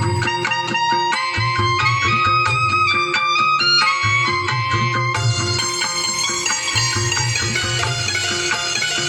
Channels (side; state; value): both; identical; correlation 1.00